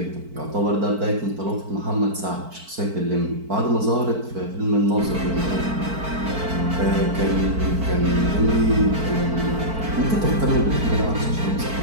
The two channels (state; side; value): late; left; 4.5 ms